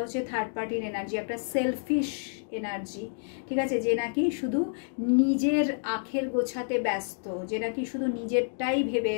হচ্ছে থার্ড পার্টির এনার্জি, একটা সেলফিশ এনার্জি। ঠিক আছে? যে নাকি শুধু নিজের আখের গোছাতে ব্যস্ত, যে নাকি শুধু নিজেরটাই ভেবে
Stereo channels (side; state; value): right; silent; digital silence